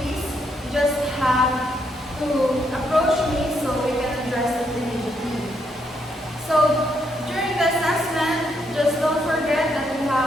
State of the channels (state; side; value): normal; both; correlation 0.76